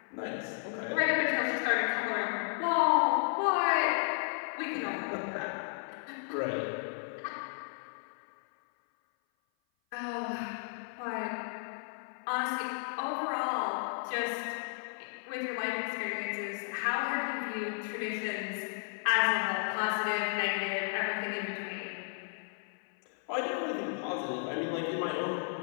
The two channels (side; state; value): right; silent; 55 dB below the other